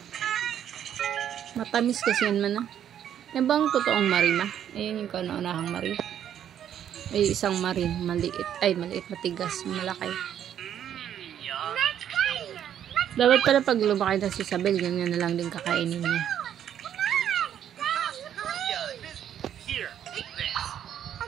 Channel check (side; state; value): left; quieter; 9.9 dB